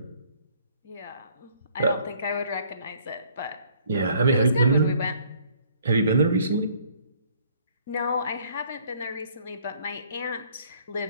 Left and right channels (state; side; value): inverted; both; correlation -0.60